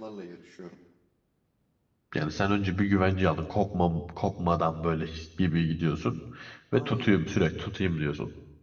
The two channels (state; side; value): identical; both; correlation 1.00